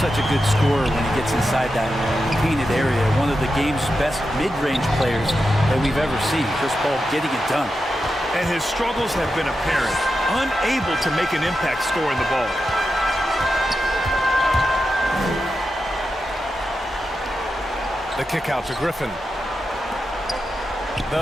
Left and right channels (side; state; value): both; normal; correlation 0.89